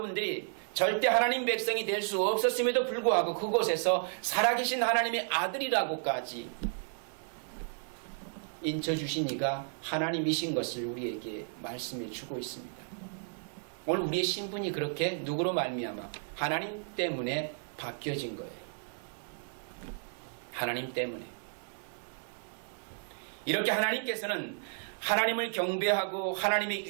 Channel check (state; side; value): silent; left; digital silence